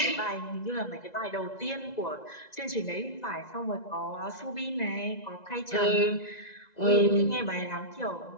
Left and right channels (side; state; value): right; late; 2.0 ms